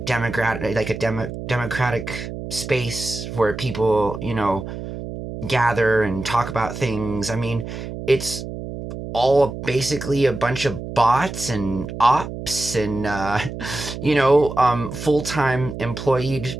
democratic space where people, gather and talk about things. I mean, it's all basically a bunch of bots and ops and full-time employed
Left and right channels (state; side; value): noise; right; hum, 8 dB below the sound